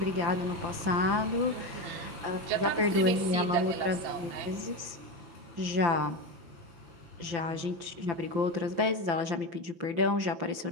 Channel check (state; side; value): late; left; 5.8 ms